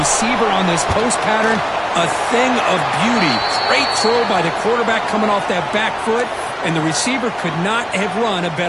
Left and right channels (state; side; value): identical; both; correlation 1.00